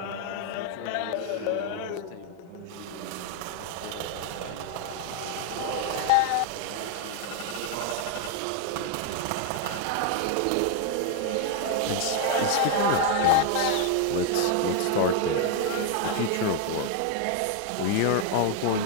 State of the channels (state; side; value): different; both; correlation 0.01